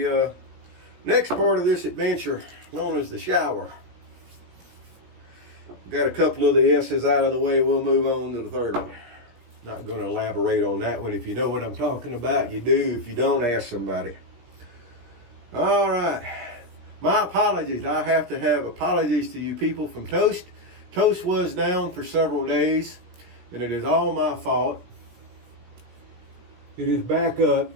next part of this adventure, known as the shower. Got a couple of the S's out of the way. We'll move on to the third one. Not going to elaborate on that one. If you know what I'm talking about, you do. If you don't, ask somebody. All right. My apologies. I have to have apologies to you people from Toast. Toast was down for several days, and it is all my fault. It is back up.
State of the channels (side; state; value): left; late; 17 ms